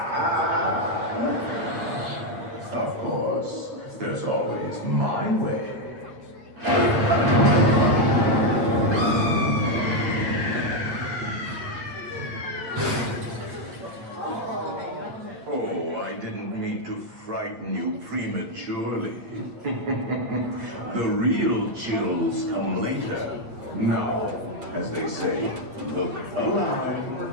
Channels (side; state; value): left; late; 8.8 ms